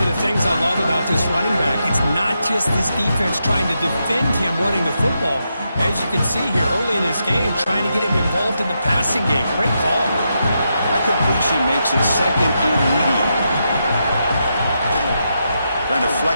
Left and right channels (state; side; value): inverted; both; correlation -0.84